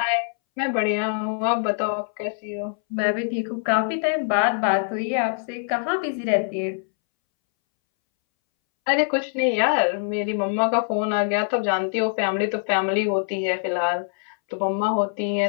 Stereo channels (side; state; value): right; silent; 63 dB below the other